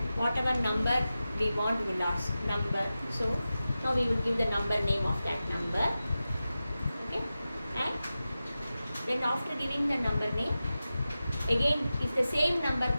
whatever number we want, we will ask number. So now we will give the number name of that number. Okay, and then after giving the number name, again if the same number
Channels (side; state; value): both; inverted; correlation -0.94